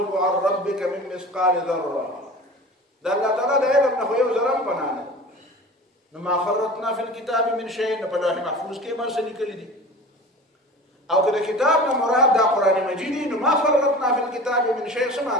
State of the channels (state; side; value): normal; both; correlation 0.37